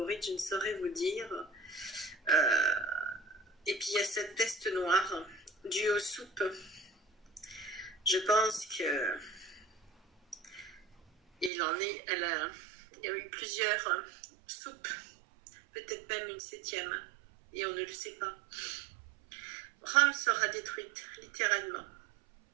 je ne saurais vous dire. Euh, et puis il y a cette peste noire due aux soupes. Je pense que il y a eu plusieurs soupes, peut-être même une 7e, et on ne le sait pas. Rome sera détruite, littéralement.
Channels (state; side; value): drops out; left; at 11.5 s